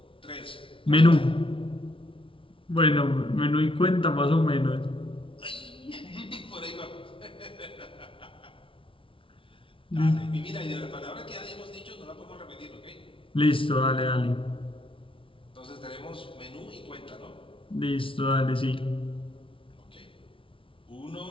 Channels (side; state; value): right; late; 0.25 ms